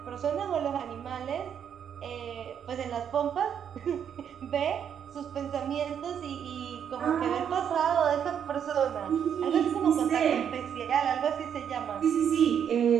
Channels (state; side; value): quieter; left; 8.4 dB